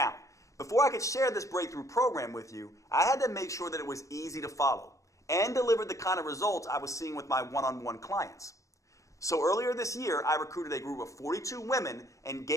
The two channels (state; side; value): late; right; 0.15 ms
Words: before I could share this breakthrough program with you, I had to make sure that it was easy to follow and delivered the kind of results I was seeing with my one-on-one clients. So earlier this year, I recruited a group of 42 women and